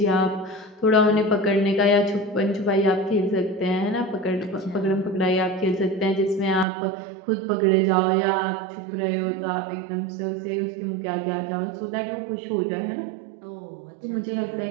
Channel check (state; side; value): drops out; left; at 6.7 s